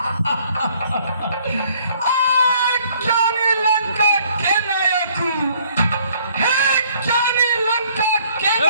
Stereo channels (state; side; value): inverted; both; correlation -0.62